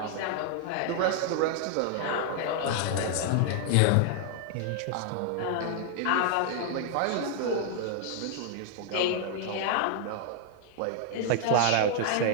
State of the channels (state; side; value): different; both; correlation 0.00